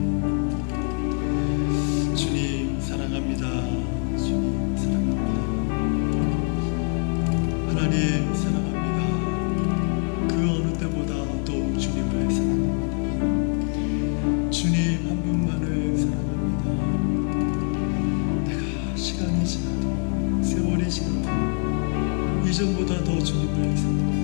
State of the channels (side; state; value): right; quieter; 39.9 dB